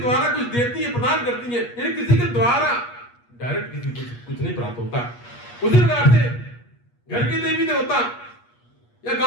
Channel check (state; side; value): late; right; 8.4 ms